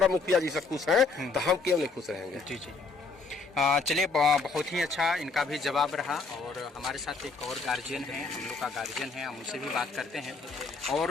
मुखिया जी से खुश है, तो हम क्यों नहीं खुश रहेंगे? जी जी। चलिए, बहुत ही अच्छा इनका भी जवाब रहा। और हमारे साथ एक और गार्जियन है, हम लोग का गार्जियन है, हम उनसे भी बात करते हैं। और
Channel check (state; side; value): quieter; right; 4.1 dB